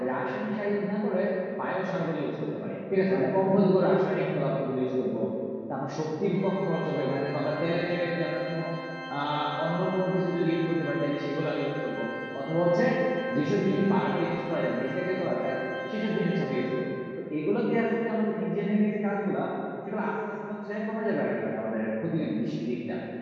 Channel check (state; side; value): identical; both; correlation 1.00